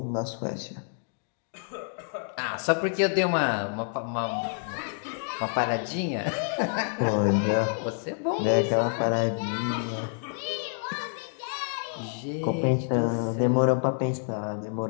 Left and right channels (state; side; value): silent; right; 59 dB below the other